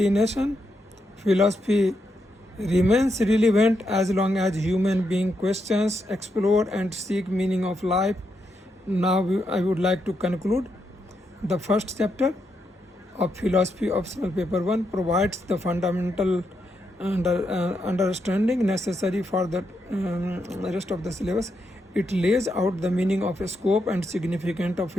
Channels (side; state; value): both; normal; correlation 0.82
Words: Philosophy remains relevant as long as human being questions, explore, and seek meaning of life. Now I would like to conclude. The first chapter of philosophy optional paper 1 provides the fundamental understanding necessary for the rest of the syllabus. It lays out the meaning of scope and significance of